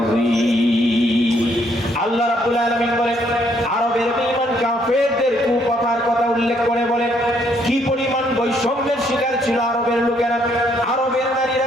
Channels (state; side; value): normal; both; correlation 0.69